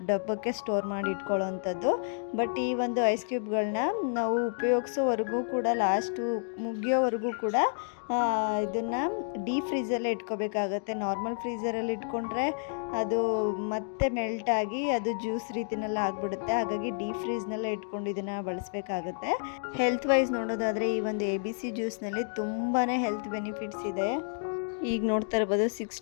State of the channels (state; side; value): silent; right; digital silence